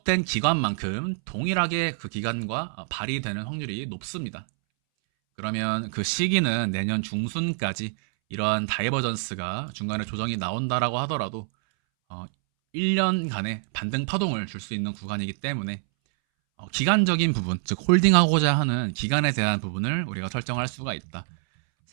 기간만큼 동일하게 그 기간과 발휘되는 확률이 높습니다. 그러면 그 시기는 내년 중순까지 이러한 다이버전스가 중간에 조정이 나온다라고 하더라도 1년간의 반등 파동을 줄 수 있는 구간이기 때문에 기간적인 부분, 즉 홀딩하고자 하는 기간에 대한 부분을 우리가 설정할 수가 있다.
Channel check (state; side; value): silent; left; 61 dB below the other